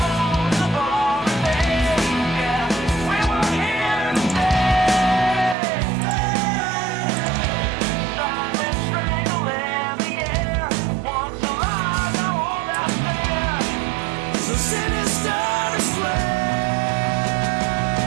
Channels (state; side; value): drops out; left; at 5.6 s